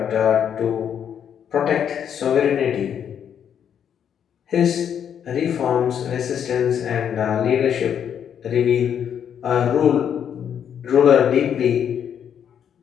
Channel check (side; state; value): right; quieter; 8.6 dB